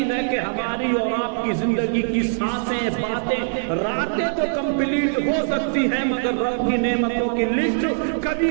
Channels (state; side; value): silent; left; digital silence